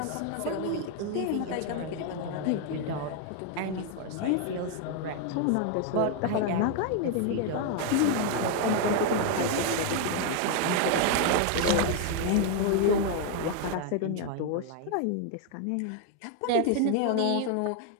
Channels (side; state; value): both; different; correlation 0.00